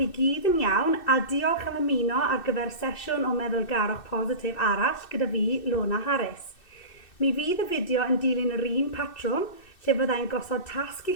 gyd yn iawn a diolch am ymuno ar gyfer sesiwn o meddwlgarwch positif arall gyda fi, Lona Haf. Mi fydd y fideo yn dilyn yr un patrwm lle fyddai'n gosod tasg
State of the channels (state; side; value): late; right; 2.6 ms